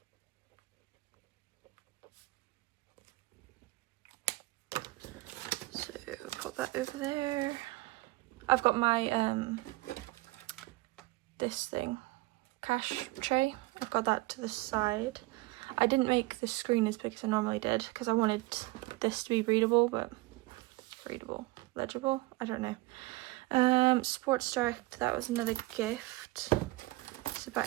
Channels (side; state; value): left; quieter; 20.8 dB